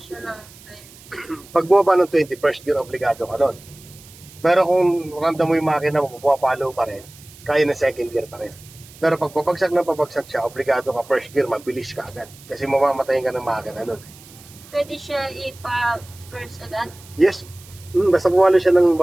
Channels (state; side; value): noise; right; hiss, 22 dB below the sound